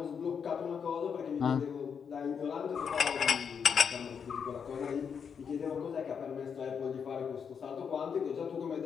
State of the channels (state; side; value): quieter; right; 6.8 dB